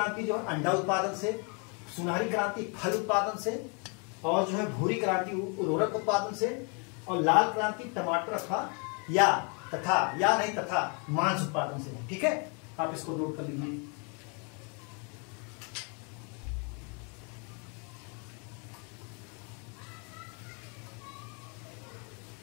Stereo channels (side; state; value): right; quieter; 35.8 dB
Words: जो है अंडा उत्पादन से, सुनहरी क्रांति फल उत्पादन से, और जो है भूरी क्रांति उर्वरक उत्पादन से, और लाल क्रांति टमाटर तथा मांस उत्पादन से, ठीक है। आप इसको नोट कर लीजिए।